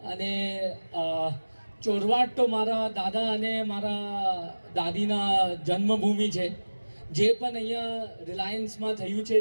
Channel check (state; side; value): inverted; both; correlation -1.00